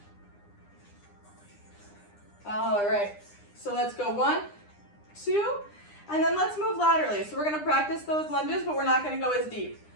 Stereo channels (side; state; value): right; late; 9.8 ms